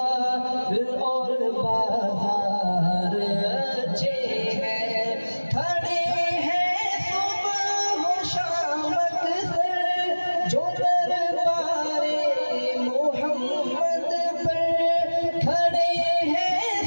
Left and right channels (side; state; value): both; inverted; correlation -1.00